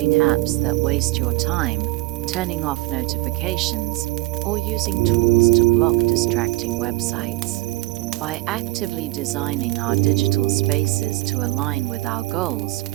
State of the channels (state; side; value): quieter; left; 19.9 dB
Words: apps that waste your time, turning off notifications, or using tools to block distracting websites. By actively designing our digital spaces to align with our goals,